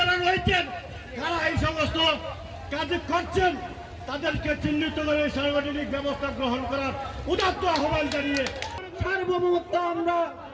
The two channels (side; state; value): both; identical; correlation 1.00